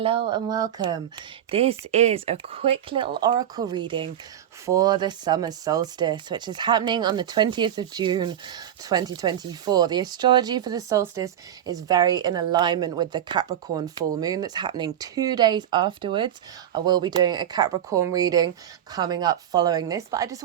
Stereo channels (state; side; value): quieter; left; 10.6 dB